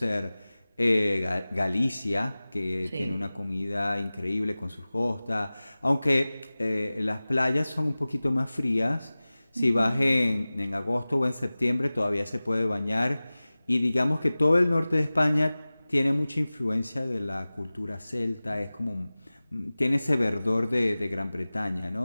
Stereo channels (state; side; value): inverted; both; correlation -0.98